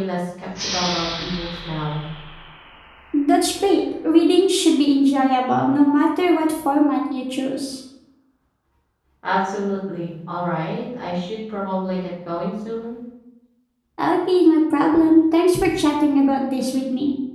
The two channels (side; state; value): both; identical; correlation 1.00